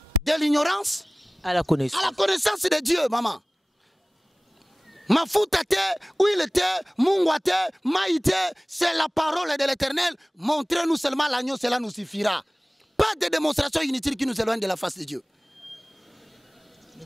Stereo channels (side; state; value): both; normal; correlation 0.98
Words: De l'ignorance à la connaissance de Dieu, maman. Mafuta te, huile te, mungwa te, maïté, c'est la parole de l'Éternel. Montrez-nous seulement l'agneau, cela nous suffira. Pas de démonstration inutile qui nous éloigne de la face de Dieu.